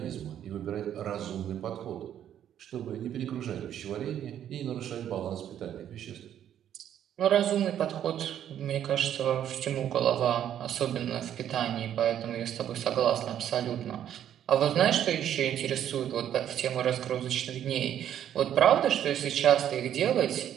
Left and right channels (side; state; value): left; quieter; 10.3 dB